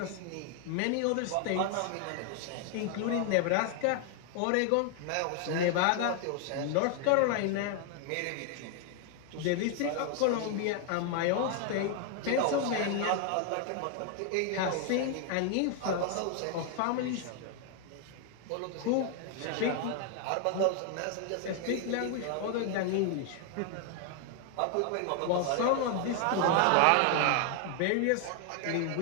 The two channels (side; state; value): both; different; correlation 0.00